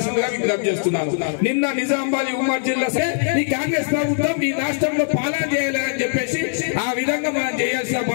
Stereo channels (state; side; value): silent; right; 65 dB below the other